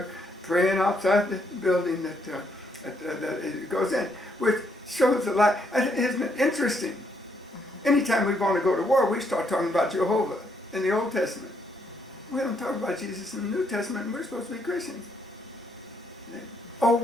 praying outside the building that it goes in, which shows a lot. Isn't it interesting? Anytime we want to go to war, we start talking about Jehovah in the Old Testament. We don't talk about Jesus in the New Testament, and we're supposed to be Christians. A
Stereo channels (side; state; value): both; normal; correlation 0.74